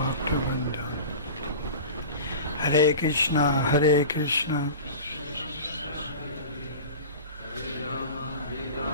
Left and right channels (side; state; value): both; inverted; correlation -0.34